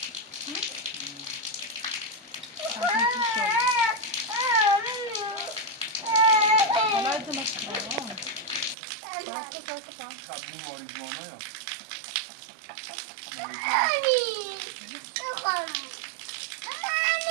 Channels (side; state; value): left; drops out; at 8.8 s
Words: قبول ماریجوانا یا